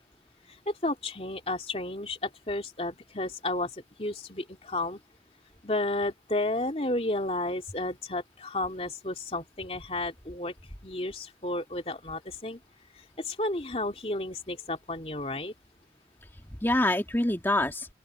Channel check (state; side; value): normal; both; correlation 0.43